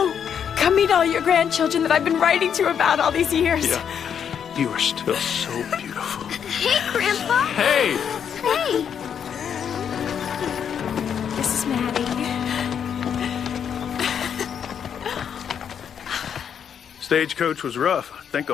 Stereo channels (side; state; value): right; quieter; 8.0 dB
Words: meet all your grandchildren that I've been writing to about all these years. Yeah, you are still so beautiful. Hey, Grandpa. Hey! Hey. This is Maddie. Stagecoach was rough. I think